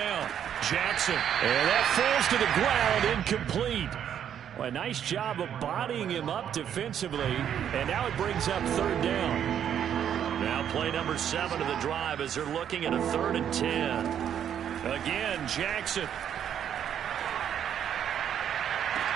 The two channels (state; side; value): quieter; left; 9.3 dB